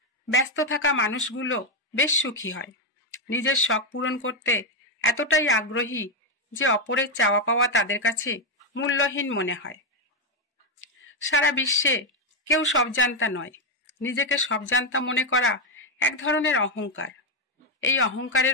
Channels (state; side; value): normal; both; correlation 0.04